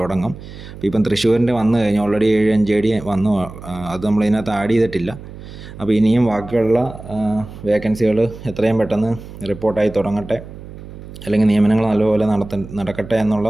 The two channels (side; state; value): right; noise; hum, 14 dB below the sound